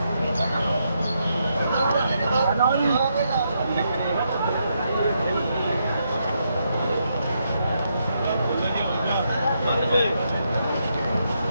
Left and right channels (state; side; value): inverted; both; correlation -0.80